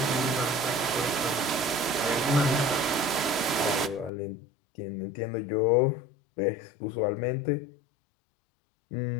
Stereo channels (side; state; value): right; drops out; at 4.1 s